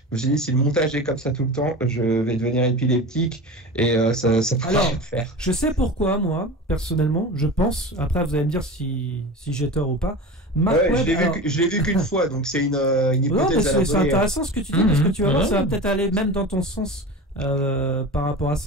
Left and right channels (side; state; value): both; normal; correlation 0.31